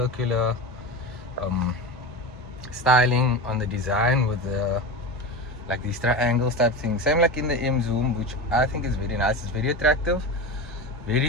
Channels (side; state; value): both; normal; correlation 0.24